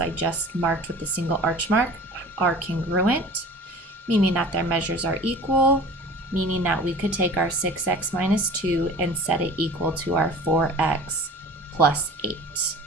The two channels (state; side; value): normal; both; correlation 0.42